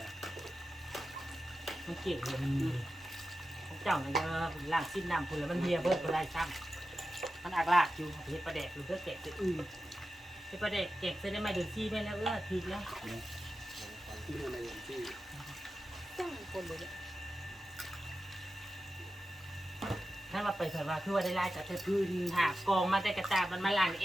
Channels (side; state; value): both; normal; correlation 0.92